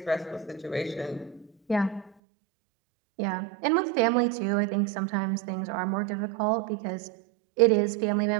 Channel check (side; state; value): left; drops out; at 2.1 s